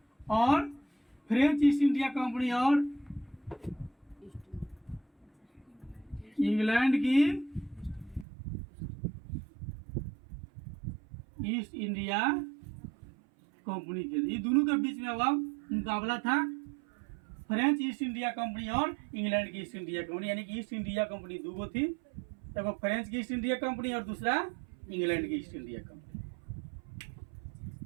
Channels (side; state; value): left; drops out; at 8.2 s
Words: और फ्रेंच ईस्ट इंडिया कंपनी और इंग्लैंड की ईस्ट इंडिया कंपनी के, ये दोनों के बीच में अब मुकाबला था फ्रेंच ईस्ट इंडिया कंपनी और इंग्लैंड की ईस्ट इंडिया कंपनी, यानी कि ईस्ट इंडिया कंपनी दो थी, एक फ्रेंच की ईस्ट इंडिया कंपनी और दूसरा इंग्लैंड की ईस्ट इंडिया कंपनी,